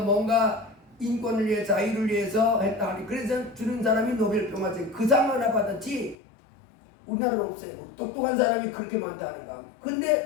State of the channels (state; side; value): drops out; right; at 6.2 s